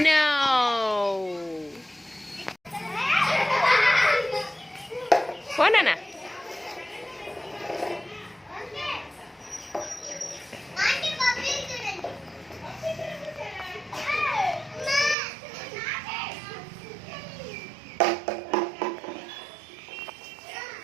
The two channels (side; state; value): left; drops out; at 15.2 s